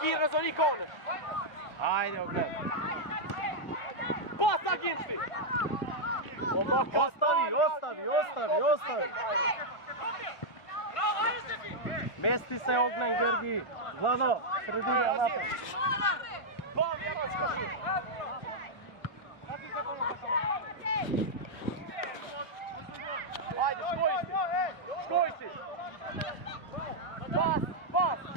Razon i Koner. Ajde, ogled. Pas, Aginci! Ostavi. Mesti se Ognjen, Georgi. Vlado, sredina napred. Ba, Vjeročka, živ! Ajde, škoj si! Pas!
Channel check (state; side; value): late; right; 1.5 ms